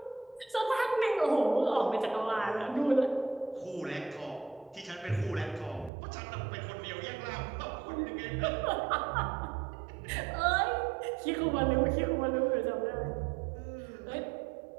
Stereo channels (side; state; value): left; drops out; at 5.9 s